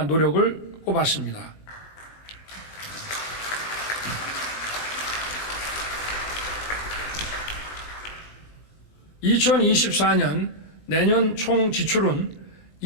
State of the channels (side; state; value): right; late; 19 ms